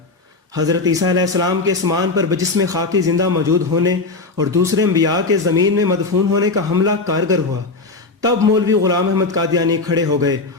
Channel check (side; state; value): right; quieter; 3.6 dB